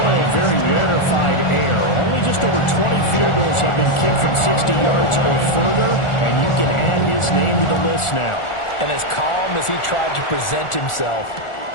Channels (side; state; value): right; late; 1.4 ms